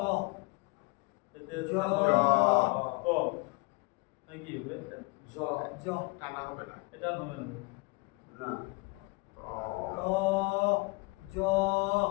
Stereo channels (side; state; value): right; quieter; 27.9 dB